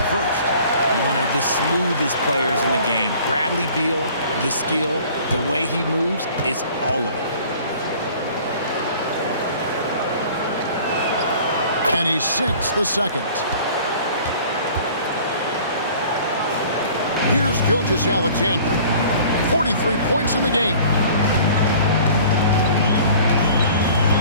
first. One of the smoothest players in the game. Bradley Beal, the skill, the way he moves, it's all of it. And he sinks the second. Here's Gilgeous-Alexander. 43 points in the game.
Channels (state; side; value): inverted; both; correlation -0.49